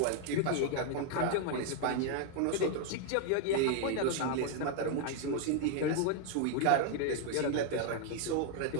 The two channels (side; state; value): both; different; correlation 0.00